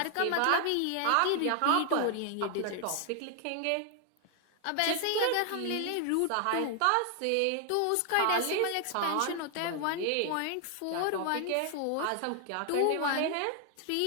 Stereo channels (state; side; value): different; both; correlation 0.00